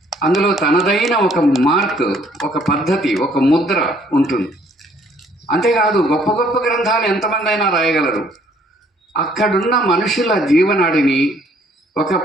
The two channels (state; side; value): normal; both; correlation 0.62